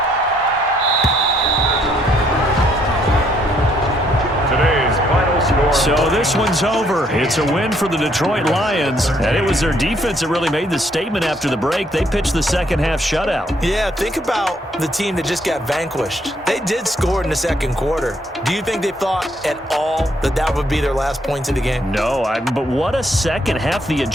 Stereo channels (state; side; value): normal; both; correlation 0.69